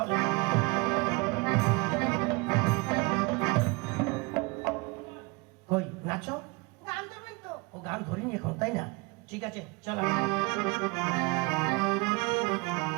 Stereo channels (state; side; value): quieter; left; 27.0 dB